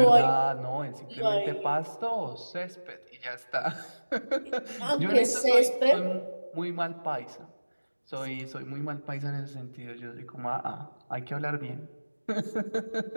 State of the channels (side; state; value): both; inverted; correlation -1.00